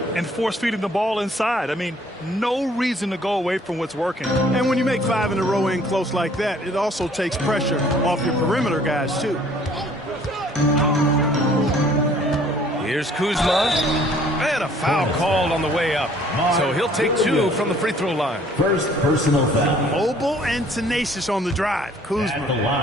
And force feeding the ball inside. I mean, no reason to go away from what's working. And when you make 5 in a row in close like that, it also takes pressure off your perimeter guys, too. Here's Kuzma. And a foul called on the way up. So he'll take 2 from the free throw line. First personal foul. Mobile and tenacious on the drive.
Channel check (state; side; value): normal; both; correlation 0.57